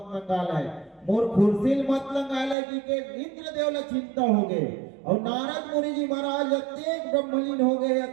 नंगालाय, मोर कुर्सी मत नंगालाय कि के इंद्र देव ला चिंता हो गए। और नारद मुनि जी महाराज अत्येक ब्रह्मलीन हो गए,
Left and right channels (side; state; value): left; drops out; at 2.6 s